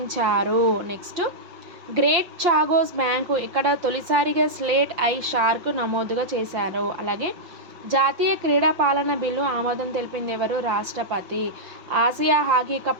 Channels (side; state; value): left; late; 5.8 ms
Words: నెక్స్ట్ గ్రేట్ చాగోస్ బ్యాంకు ఇక్కడ తొలిసారిగా స్లేట్ ఐ షార్క్ నమోదుగా చేశారు. అలాగే జాతీయ క్రీడా పాలన బిల్లు ఆమోదం తెలిపింది ఎవరు? రాష్ట్రపతి. ఆసియా హాకీ